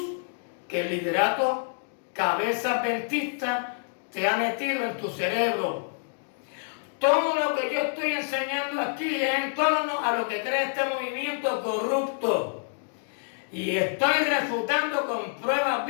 que el liderato cabeza adventista te ha metido en tu cerebro. Todo lo que yo estoy enseñando aquí es en torno a lo que cree este movimiento corrupto. Y estoy refutando con pruebas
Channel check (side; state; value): right; silent; digital silence